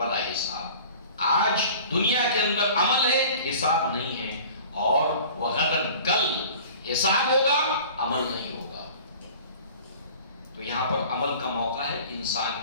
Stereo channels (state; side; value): inverted; both; correlation -0.43